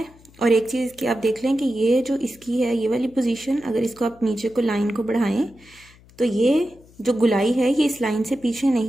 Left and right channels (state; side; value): noise; left; hum, 26 dB below the sound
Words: और एक चीज़ की आप देख लें कि ये जो इसकी है ये वाली पोजीशन, अगर इसको आप नीचे को लाइन को बढ़ाएं तो ये जो गुलाई है ये इस लाइन से पीछे